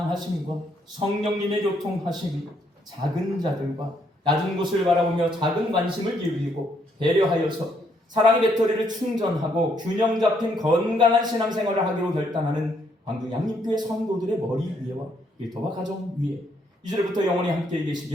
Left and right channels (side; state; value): both; normal; correlation 0.71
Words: 성령님의 교통하심이 작은 자들과 낮은 곳을 바라보며 작은 관심을 기울이고 배려하여서 사랑의 배터리를 충전하고 균형 잡힌 건강한 신앙생활을 하기로 결단하는 광주 양림교회 성도들의 머리 위에와 일터와 가정 위에 이제부터 영원히 함께